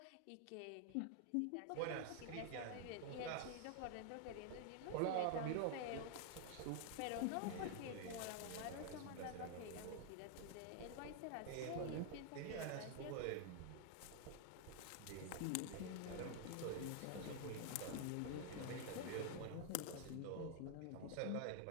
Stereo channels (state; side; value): different; both; correlation 0.00